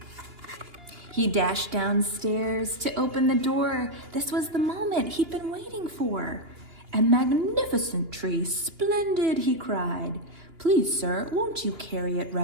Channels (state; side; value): late; left; 2.9 ms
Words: He dashed downstairs to open the door. This was the moment he'd been waiting for. "A magnificent tree, splendid," he cried. "Please, sir, won't you carry it